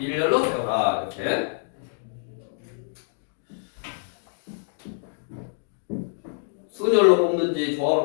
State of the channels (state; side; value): silent; right; digital silence